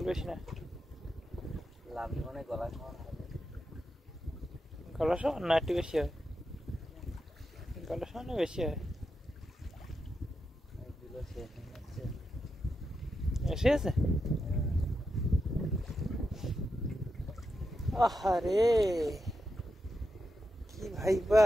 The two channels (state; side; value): normal; both; correlation 0.87